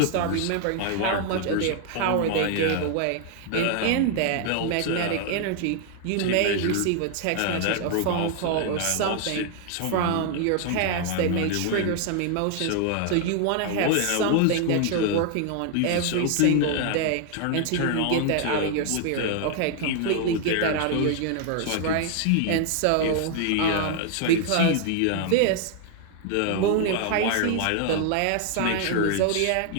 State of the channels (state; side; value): different; both; correlation 0.00